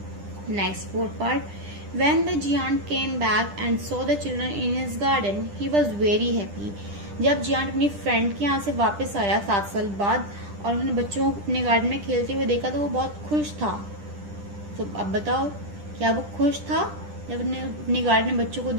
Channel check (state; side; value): late; left; 10 ms